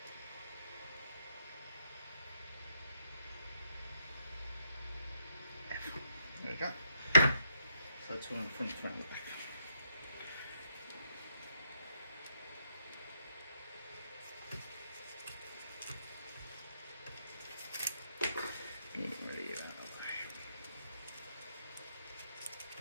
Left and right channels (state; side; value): inverted; both; correlation -0.75